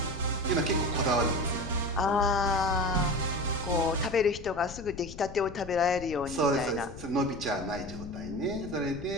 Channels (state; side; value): noise; left; rumble, 13 dB below the sound